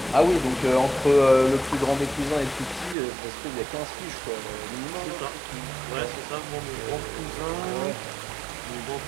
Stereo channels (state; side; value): drops out; left; at 3.0 s